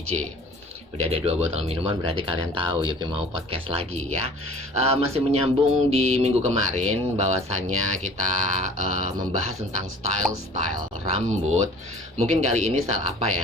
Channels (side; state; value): both; normal; correlation 0.48